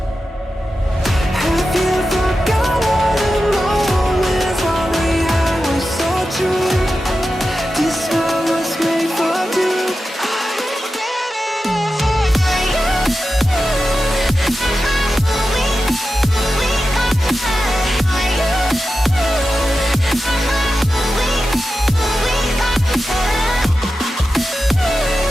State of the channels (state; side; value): normal; both; correlation 0.92